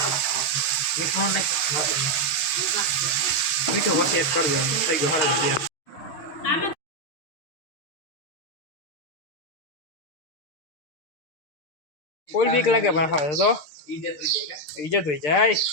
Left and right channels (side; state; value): right; late; 6.6 ms